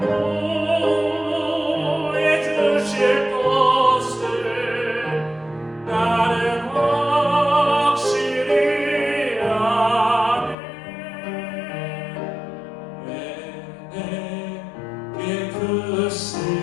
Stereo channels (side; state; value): right; drops out; at 10.6 s